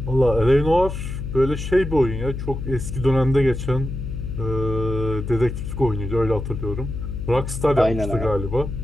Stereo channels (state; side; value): noise; left; hum, 6 dB below the sound